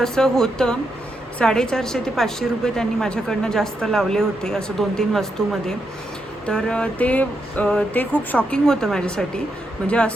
होतं. 450 ते 500 रुपये त्यांनी माझ्याकडनं जास्त लावले होते असं 2-3 वस्तूमध्ये. तर ते खूप शॉकिंग होतं माझ्यासाठी. म्हणजे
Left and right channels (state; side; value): normal; both; correlation 0.82